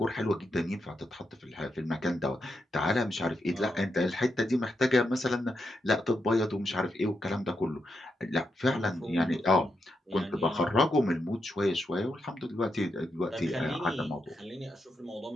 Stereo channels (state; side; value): normal; both; correlation 0.83